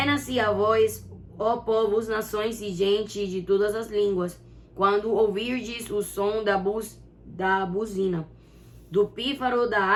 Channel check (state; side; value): identical; both; correlation 1.00